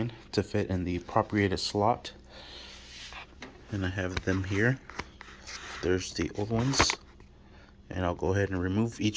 to fit in the appropriated slot. And I have them here. There's the old ones, and I'll go ahead and remove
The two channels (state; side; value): identical; both; correlation 1.00